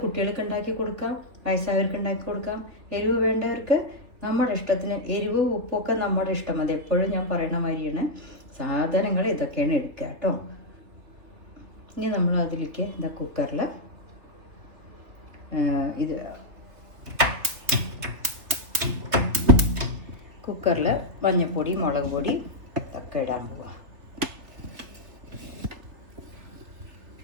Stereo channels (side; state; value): left; late; 3.2 ms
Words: കുട്ടികൾക്ക് ഉണ്ടാക്കി കൊടുക്കാം, വയസ്സായവർക്ക് ഉണ്ടാക്കി കൊടുക്കാം. എരിവ് വേണ്ടവർക്ക് നമ്മുടെ ഇഷ്ടത്തിന്, എരിവ് ഉപ്പൊക്കെ നമ്മുടെ ഇഷ്ടം. അത് എപ്പോഴും ഞാൻ പറയണ മാതിരിയാണ്. സാധനങ്ങൾ ഇതൊക്കെയാണ് എടുക്കുക കേട്ടോ. ഇനി നമ്മൾ അതിലേക്ക് കുക്കറിൽ മഞ്ഞൾപ്പൊടി, മുളക് പൊടി ഇതൊക്കെ ഇടാൻ പോവുക.